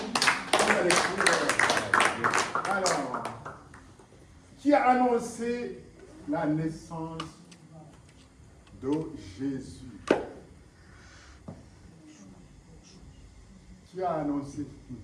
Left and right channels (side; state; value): both; identical; correlation 1.00